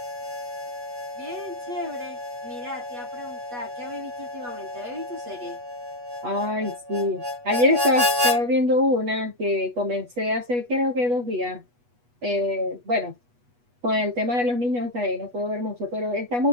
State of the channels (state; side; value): late; left; 8.2 ms